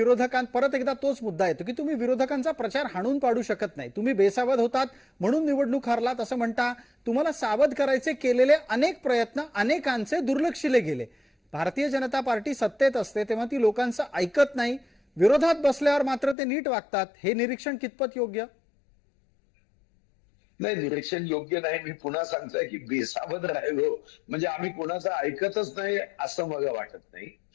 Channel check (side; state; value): right; drops out; at 16.4 s